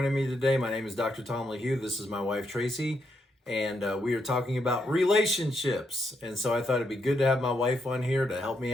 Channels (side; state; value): both; normal; correlation 0.79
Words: me today. My name is Dr. Tom LaHue. This is my wife Traci, and we are talking about relationships. And so I thought it'd be good to have my wife on here to help me